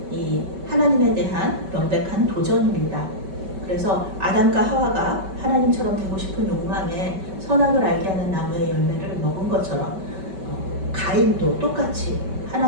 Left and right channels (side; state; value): left; late; 5.2 ms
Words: 이 하나님에 대한 명백한 도전입니다. 그래서 아담과 하와가 하나님처럼 되고 싶은 욕망에 선악을 알게 하는 나무의 열매를 먹은 것처럼 가인도 똑같이